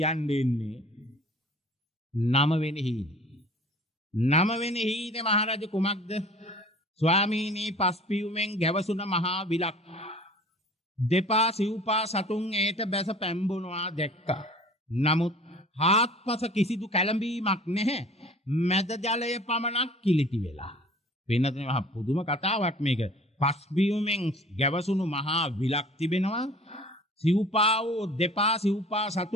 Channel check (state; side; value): normal; both; correlation 0.47